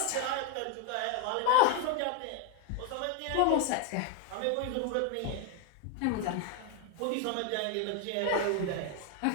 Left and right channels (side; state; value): both; different; correlation 0.01